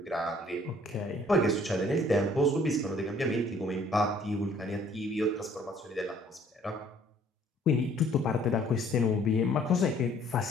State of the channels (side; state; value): both; normal; correlation 0.59